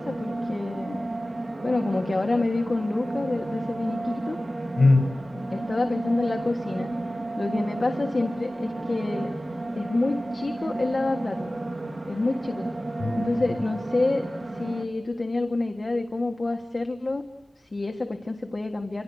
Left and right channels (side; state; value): both; normal; correlation 0.97